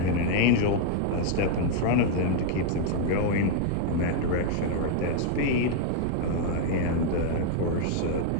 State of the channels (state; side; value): different; both; correlation 0.00